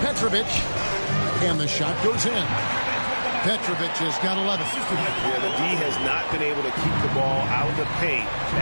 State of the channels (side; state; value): both; inverted; correlation -1.00